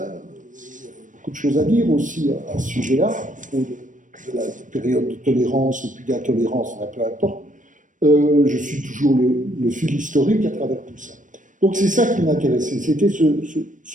beaucoup de choses à dire aussi à ce sujet-là, à propos de la période de tolérance ou puis d'intolérance, peu importe. Je suis toujours le fil historique à travers tout ça. Donc c'est ça qui m'intéressait, c'était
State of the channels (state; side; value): late; left; 0.37 ms